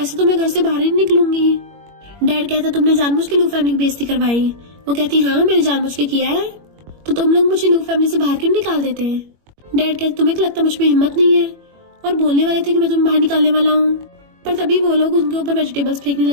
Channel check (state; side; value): late; left; 21 ms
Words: तो मैं घर से बाहर ही निकलूंगी। डैड कहता तुमने जानबूझ के लू फैमिली की बेइज्जती करवाई। वो कहती हाँ मैंने जानबूझ के किया है, तो तुम लोग मुझे लू फैमिली से बाहर क्यों निकाल देते हैं। डैड कहते तुम्हें लगता मुझ में हिम्मत नहीं है, और बोलने वाले थे कि मैं तुम्हें बाहर निकालने वाला हूँ, पर तभी वो लोग उनके ऊपर वेजिटेबल्स फेंकने